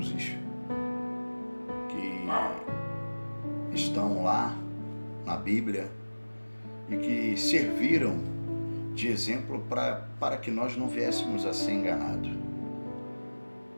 que estão lá na Bíblia e que serviram de exemplo para que nós não viéssemos a ser enganados.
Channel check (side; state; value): both; inverted; correlation -1.00